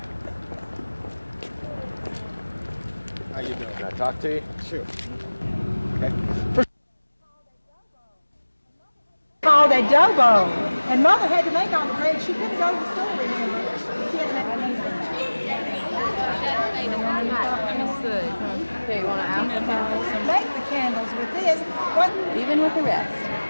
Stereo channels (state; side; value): inverted; both; correlation -1.00